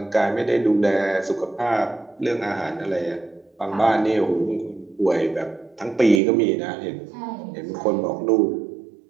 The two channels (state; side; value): drops out; left; at 6.2 s